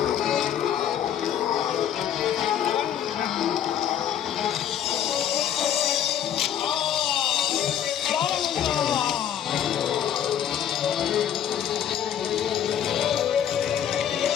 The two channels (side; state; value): right; quieter; 9.7 dB